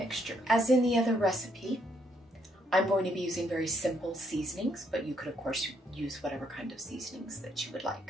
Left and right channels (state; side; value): normal; both; correlation 0.72